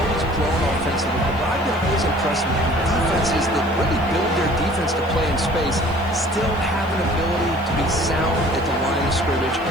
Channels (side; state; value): right; noise; hiss, 27 dB below the sound